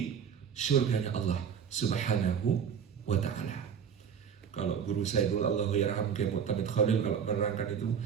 surganya Allah Subhanahu wa taala. Kalau guru saya dulu, Allahyarham Kiai Mu'tamid Khalil, kalau menerangkan itu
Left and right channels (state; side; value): quieter; left; 7.5 dB